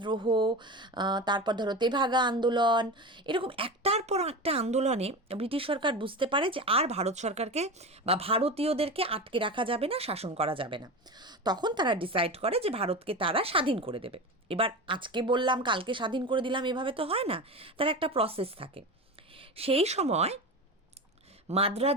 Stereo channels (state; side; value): normal; both; correlation 0.25